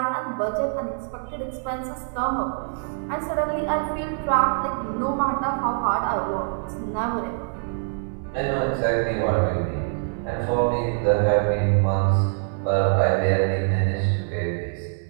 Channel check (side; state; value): left; silent; digital silence